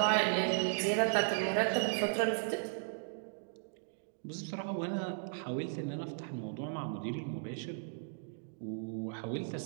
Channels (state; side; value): silent; left; digital silence